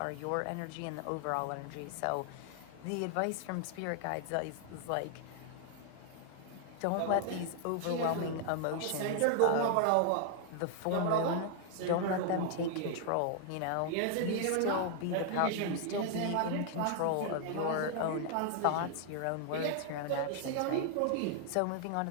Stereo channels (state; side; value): different; both; correlation 0.00